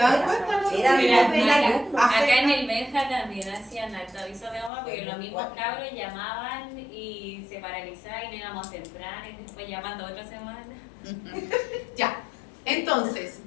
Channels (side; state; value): right; drops out; at 4.7 s